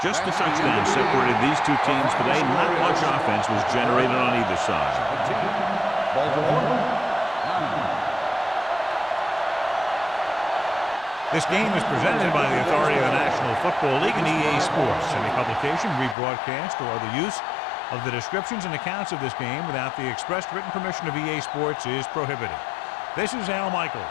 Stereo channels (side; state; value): right; drops out; at 16.2 s